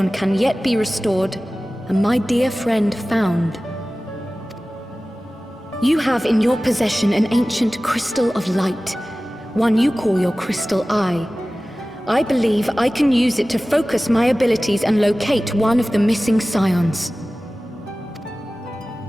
can yet be restored, and my dear friend found. You have in your possession an ancient crystal of light, one you call your crystal eye. I believe I can use it to focus my abilities and locate one of the missing scions.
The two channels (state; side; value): normal; both; correlation 0.97